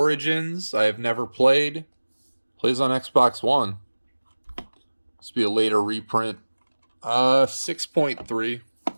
I have never played. Plays on Xbox One. This will be a later reprint. 6.3.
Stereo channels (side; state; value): both; inverted; correlation -1.00